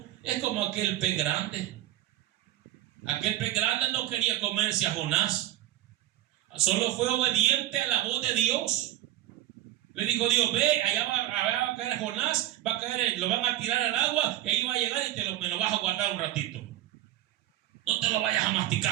es como aquel pez grande. Aquel pez grande no quería comerse a Jonás, solo fue obediente a la voz de Dios. Le dijo Dios: ve, allá va a caer Jonás, va a caer, lo van a tirar al agua y ahí va a llegar y me lo vas a guardar un ratito. No te lo vayas a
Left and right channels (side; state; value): left; quieter; 14.0 dB